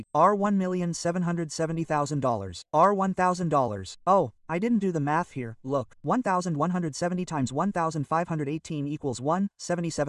$1,770,000, $1,000. Oh, I didn't do the math here, look, 1,170 times 1,518 equals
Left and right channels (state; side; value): identical; both; correlation 1.00